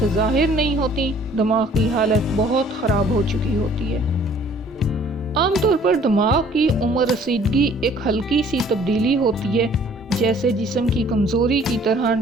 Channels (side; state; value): both; normal; correlation 0.56